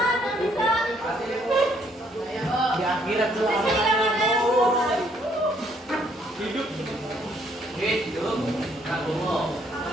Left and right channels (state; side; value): normal; both; correlation 0.67